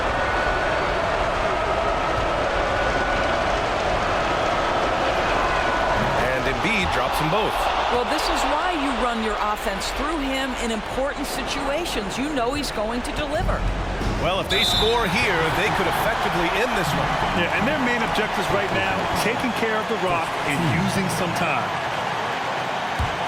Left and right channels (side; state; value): both; identical; correlation 1.00